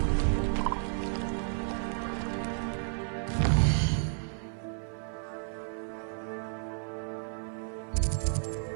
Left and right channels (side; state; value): left; silent; digital silence